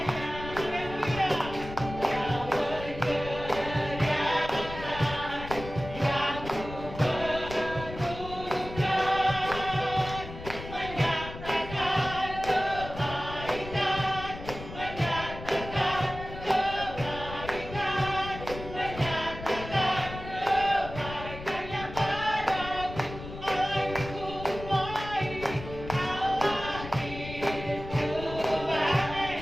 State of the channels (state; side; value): noise; left; rumble, 11 dB below the sound